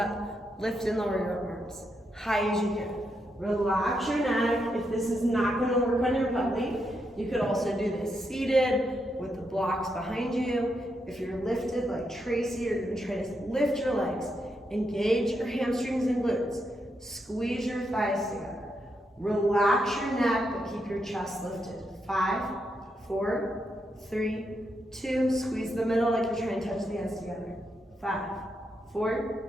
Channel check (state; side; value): normal; both; correlation 0.82